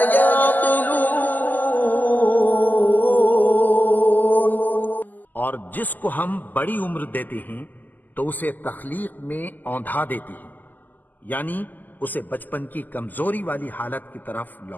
يعقلون. اور جس کو ہم بڑی عمر دیتے ہیں تو اسے تخلیق میں اوندھا دیتے ہیں، یعنی اسے بچپن کی کمزوری والی حالت کی طرف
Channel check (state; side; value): late; right; 0.085 ms